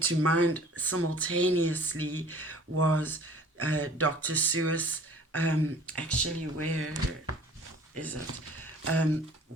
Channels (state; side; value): normal; both; correlation 0.49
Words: to mind simultaneously was Dr. Seuss, actually, where is it? And